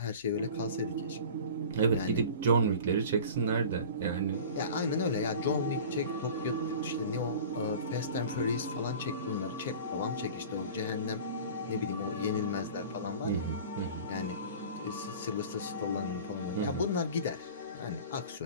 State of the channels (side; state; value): both; inverted; correlation -0.39